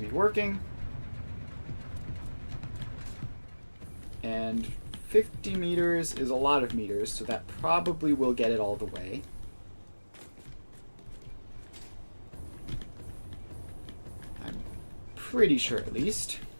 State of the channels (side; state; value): both; inverted; correlation -1.00